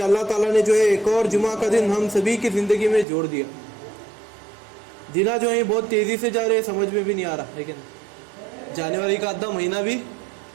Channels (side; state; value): left; drops out; at 3.1 s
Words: اللہ تعالیٰ نے جو ہے ایک اور جمعہ کا دن ہم سبھی کی زندگی میں جوڑ دیا۔ دنوں جو ہیں بہت تیزی سے جا رہے ہیں، سمجھ میں بھی نہیں آ رہا ہے کہ نہیں، جنوری کا آدھا مہینہ بھی